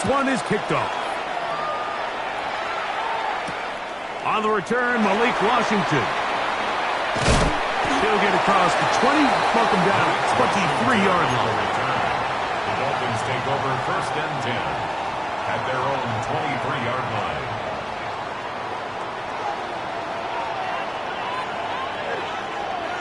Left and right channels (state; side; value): identical; both; correlation 1.00